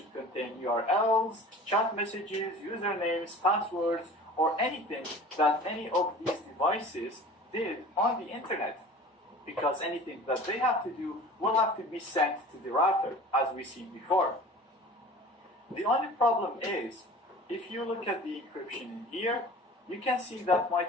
contain URLs, chat messages, usernames, passwords, or anything that any of these devices did on the internet. Because anything that they have to do will have to be sent to the router, as we seen before. The only problem is, if you look at the encryption in here, you can see that my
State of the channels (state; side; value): normal; both; correlation 0.41